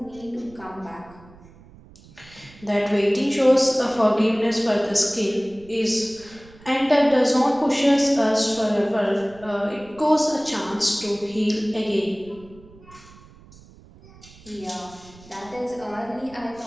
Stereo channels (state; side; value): noise; right; rumble, 23 dB below the sound